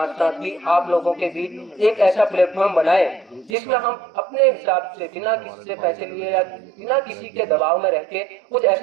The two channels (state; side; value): drops out; left; at 3.6 s